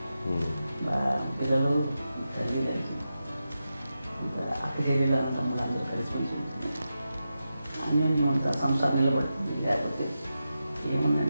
పిల్లలు తల్లి కలిసి అక్క చెల్లెలు తమ్ముడు అందరూ కలిసిమెలిసి ఉంటుంది. అన్యోన్యం అంతా సంసారం నిలబడుతుంది. లేకపోతే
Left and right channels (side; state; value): both; inverted; correlation -0.90